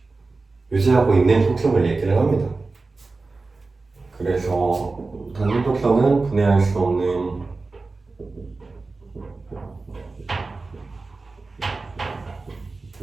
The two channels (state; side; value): quieter; left; 3.7 dB